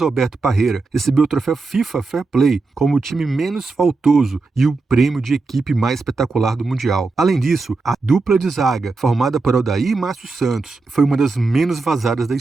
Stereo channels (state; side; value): quieter; left; 3.9 dB